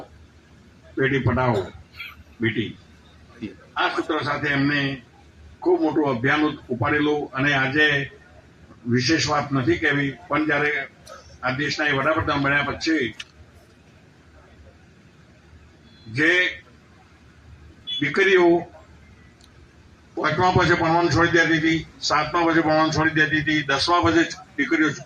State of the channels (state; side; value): identical; both; correlation 1.00